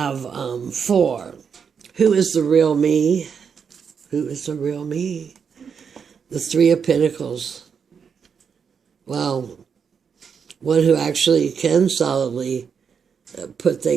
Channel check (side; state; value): left; quieter; 6.6 dB